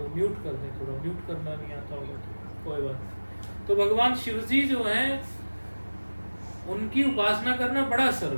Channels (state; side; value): inverted; both; correlation -1.00